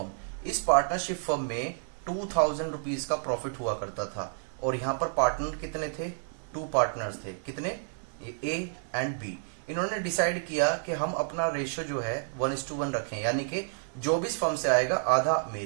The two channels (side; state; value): left; silent; 55 dB below the other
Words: इस पार्टनरशिप फर्म में 2000 रुपीज का प्रॉफिट हुआ करता था, और यहां पर पार्टनर कितने थे? 2 पार्टनर्स थे। कितने? A and B. इन्होंने डिसाइड किया कि हम अपना रेशियो जो है 1:1 रखें, यानी कि जो भी फर्म से आएगा आधा